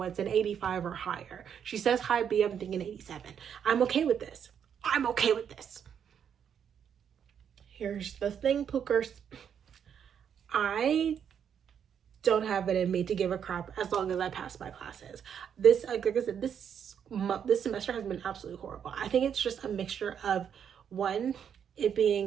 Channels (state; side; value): quieter; left; 8.1 dB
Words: an 85 or higher. She says high B. I'm thinking 87. I'm okay with this. I'm okay with this. Here's the thing, Pookers. I don't have it in me to give a crap as long as I pass my classes. This, like I said, this semester has been absolutely horrible. I think it's just a mixture of, one, it